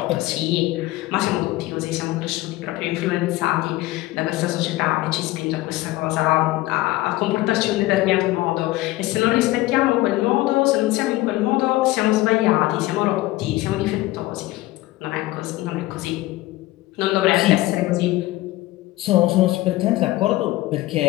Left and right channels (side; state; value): right; quieter; 18.1 dB